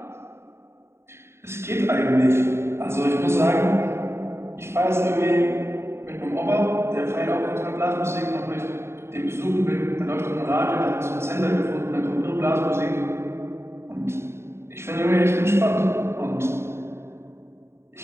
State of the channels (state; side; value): late; left; 0.12 ms